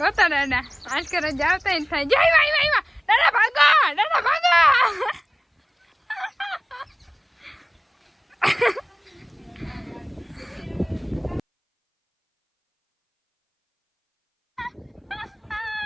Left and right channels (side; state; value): both; identical; correlation 1.00